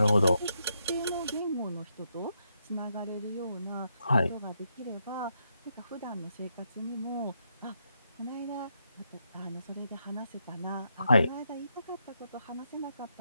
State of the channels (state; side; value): inverted; both; correlation -0.80